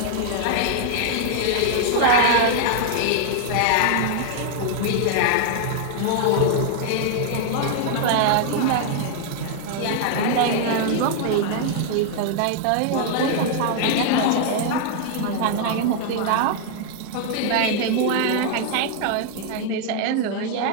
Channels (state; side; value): different; both; correlation 0.00